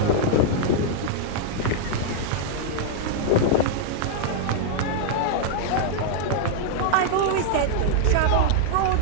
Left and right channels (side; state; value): both; different; correlation -0.01